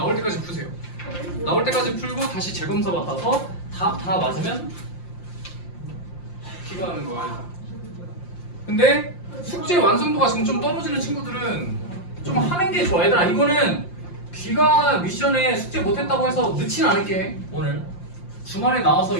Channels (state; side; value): late; right; 5.7 ms